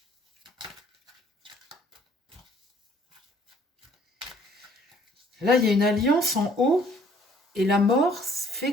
Là, il y a une alliance en haut, et la mort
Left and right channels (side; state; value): both; normal; correlation 0.59